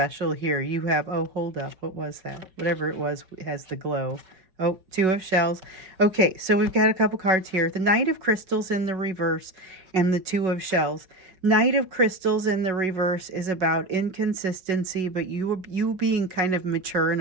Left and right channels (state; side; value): late; left; 5.3 ms